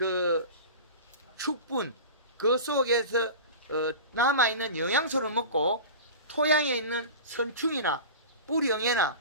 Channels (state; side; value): inverted; both; correlation -0.32